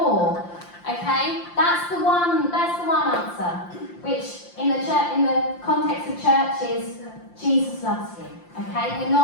Okay? That's the one answer. Which in the context of church is Jesus loves you. Okay? We're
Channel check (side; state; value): right; late; 5.7 ms